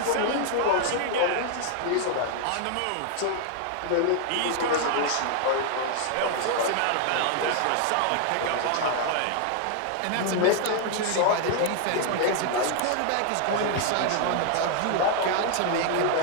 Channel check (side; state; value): both; different; correlation 0.00